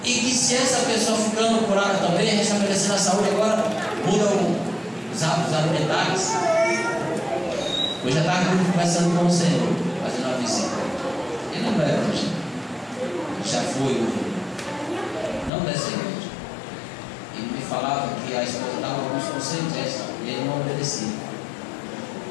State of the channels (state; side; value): drops out; right; at 15.5 s